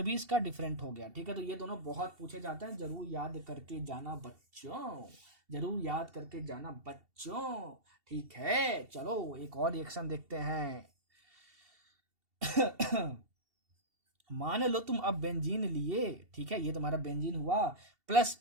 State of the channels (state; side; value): late; left; 2.7 ms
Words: भी इसका डिफरेंट हो गया। ठीक है, तो ये दोनों बहुत पूछे जाते हैं, जरूर याद करके जाना बच्चों, जरूर याद करके जाना बच्चों। ठीक है, चलो एक और रिएक्शन देखते हैं। मान लो तुम अब बेंजीन लिए, ठीक है, ये तुम्हारा बेंजीन हुआ, प्लस